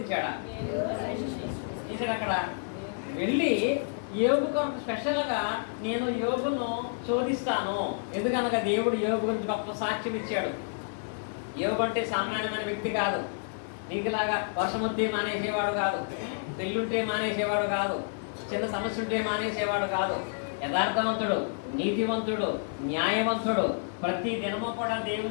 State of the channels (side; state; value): right; silent; digital silence